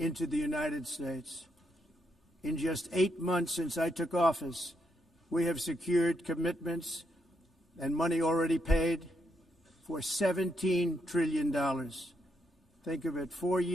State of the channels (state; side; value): normal; both; correlation 0.79